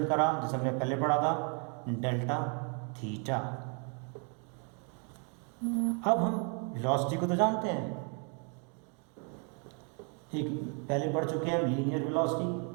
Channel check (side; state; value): left; quieter; 39.0 dB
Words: करा जैसे हमने पहले पढ़ा था, डेल्टा थीटा। अब हम वेलोसिटी को तो जानते हैं, एक पहले पढ़ चुके हैं लीनियर वेलोसिटी,